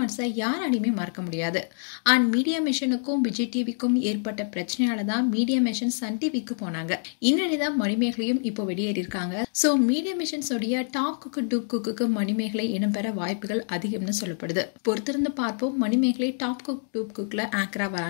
யாராலையுமே மறக்க முடியாது. அண்ட் மீடியா மிஷனுக்கும் விஜய் டிவிக்கும் ஏற்பட்ட பிரச்சனையால தான் மீடியா மிஷன் சன் டிவிக்கு போனாங்க. இந்நிலைதான் மணிமேகலையும் இப்போ வெளியேறி இருக்காங்க. சோ மீடியா மிஷன்ஸ் உடைய top cook dupe cook Manimegalai இடம்பெற வாய்ப்புகள் அதிகம்னு சொல்லப்படுது. பொறுத்திருந்து பார்ப்போம் மணிமேகலை டாப் குக் டூப் குக்ல ஆங்கரா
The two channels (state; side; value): silent; right; digital silence